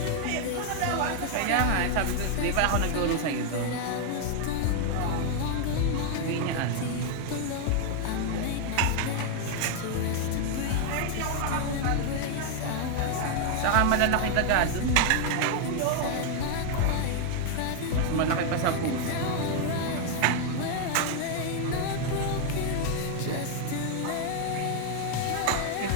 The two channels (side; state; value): both; different; correlation 0.00